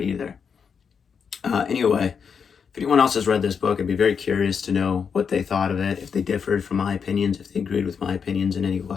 Anyway, if anyone else has read this book, I'd be very curious to know what they thought of it, if they differed from my opinions, if they agreed with my opinions in any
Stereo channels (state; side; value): quieter; right; 6.5 dB